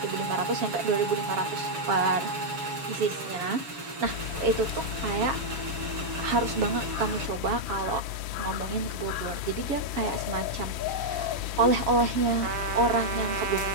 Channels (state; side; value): late; left; 7.1 ms